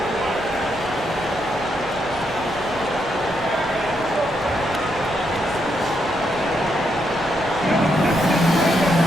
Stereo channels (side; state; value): right; noise; hum, 19 dB below the sound